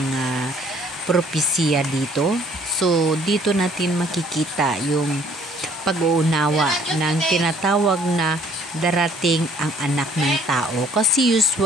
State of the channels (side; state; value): both; normal; correlation 0.59